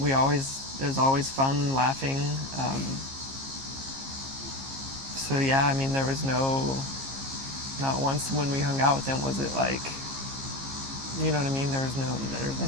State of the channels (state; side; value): late; left; 15 ms